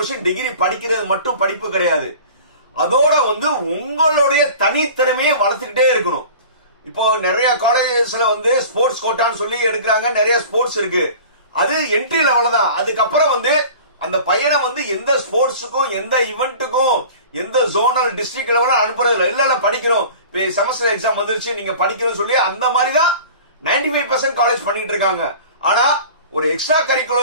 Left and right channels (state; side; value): inverted; both; correlation -0.41